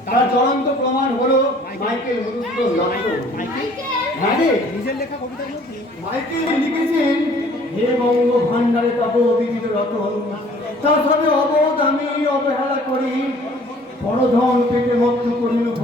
তার জ্বলন্ত প্রমাণ হলো মাইকেল মধুসূদন দত্ত। হ্যাঁ রে, নিজের লেখা কবিতার মধ্যে মাইকেল লিখেছেন, হে বঙ্গ ভান্ডারে তব বিবিধ রতন, তার সবে অবোধ আমি অবহেলা করি, পরধন পেটে মুক্ত করিল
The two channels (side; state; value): both; normal; correlation 0.55